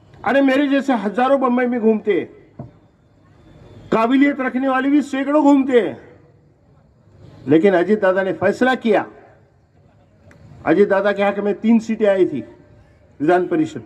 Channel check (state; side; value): identical; both; correlation 1.00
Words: अरे मेरे जैसे हजारों बंबई में घूमते, काबिलियत रखने वाले भी सैकड़ों घूमते हैं, लेकिन अजीत दादा ने फैसला किया। अजीत दादा के हक में 3 सीटें आई थी विधान परिषद